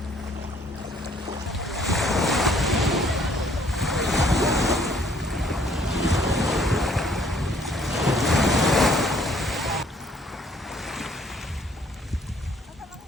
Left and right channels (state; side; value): normal; both; correlation 0.61